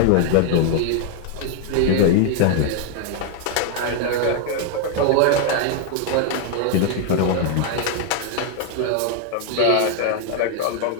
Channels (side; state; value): both; different; correlation 0.00